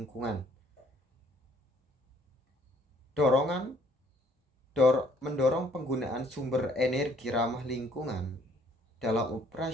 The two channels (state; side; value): normal; both; correlation 0.62